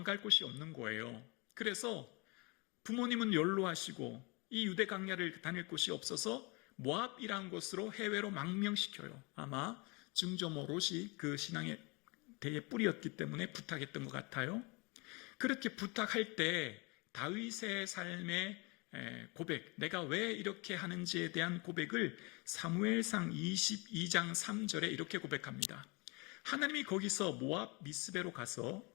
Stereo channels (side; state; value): right; quieter; 28.6 dB